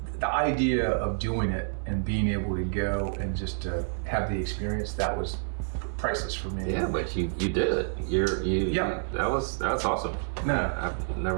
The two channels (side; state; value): left; silent; 59 dB below the other